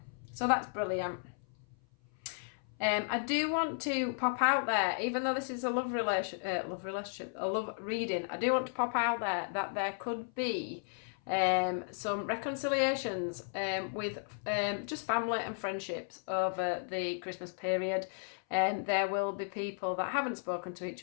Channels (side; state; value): right; silent; 55 dB below the other